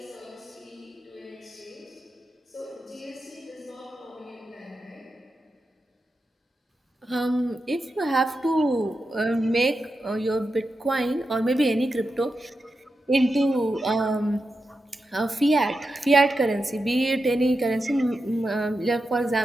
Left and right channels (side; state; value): both; normal; correlation 0.89